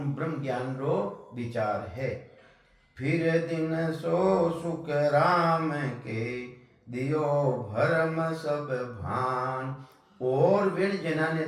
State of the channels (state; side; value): identical; both; correlation 1.00